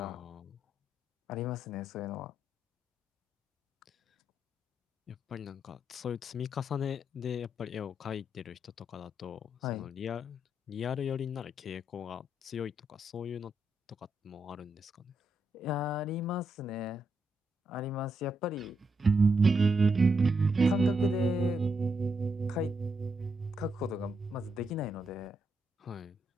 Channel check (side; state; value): both; normal; correlation 0.81